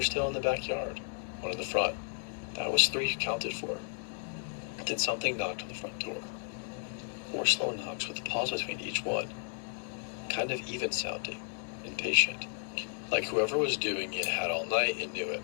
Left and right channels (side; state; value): right; silent; 55 dB below the other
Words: still in the backyard, 1 in the front. That was 3 counted for. Then something knocked on the front door. 4 slow knocks with a pause between each one. Kind of even sounding, impatient. Like whoever was doing it had all night and knew it.